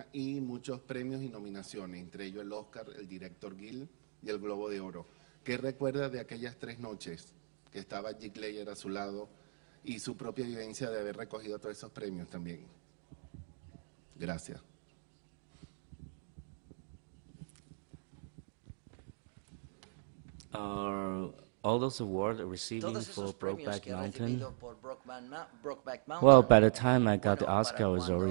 y muchos premios y nominaciones, entre ellos el Oscar, el director Gil y el Globo de Oro. ¿Qué recuerda de aquellas 3 noches que estaba Jake Layer a su lado y su propia vivencia de haber recogido todos esos premios también? Gracias. Todos esos premios que he recibido por Brokeback Mountain, bueno, para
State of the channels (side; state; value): left; silent; digital silence